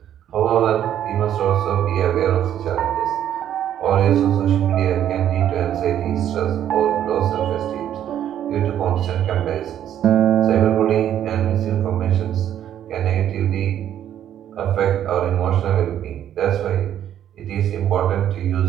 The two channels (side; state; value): left; quieter; 10.6 dB